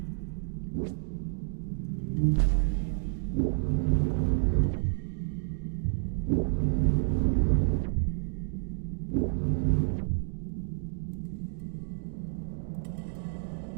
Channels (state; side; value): silent; left; digital silence